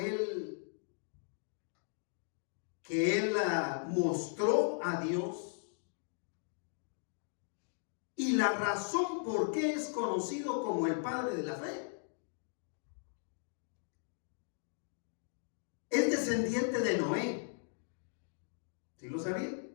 él mostró a Dios y la razón por qué es conocido como el padre de la fe. Es descendiente de Noé. ¿Sí lo sabía?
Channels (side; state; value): right; silent; digital silence